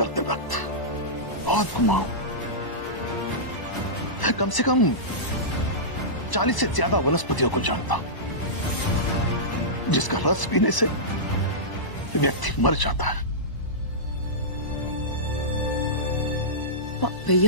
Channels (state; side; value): late; right; 1.0 ms